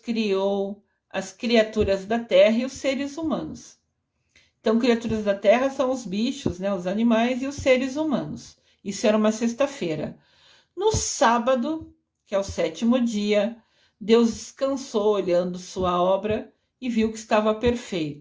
as criaturas da terra e os seres humanos. Então, criaturas da terra são os bichos, né, os animais e os seres humanos. Isso era uma sexta-feira. No sábado, que é o sétimo dia, Deus descansou olhando sua obra e viu que estava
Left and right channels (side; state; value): both; identical; correlation 1.00